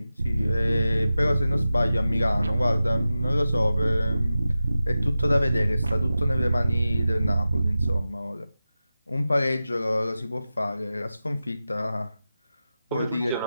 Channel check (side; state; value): both; inverted; correlation -0.93